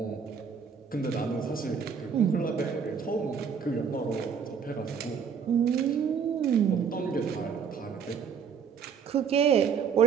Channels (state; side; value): quieter; left; 6.6 dB